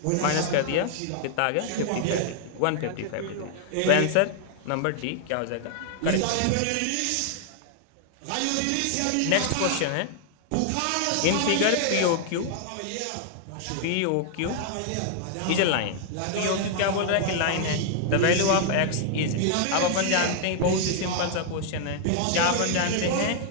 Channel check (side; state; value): both; different; correlation -0.01